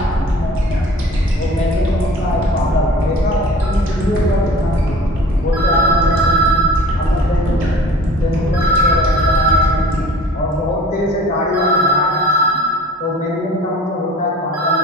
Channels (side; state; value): both; normal; correlation 0.44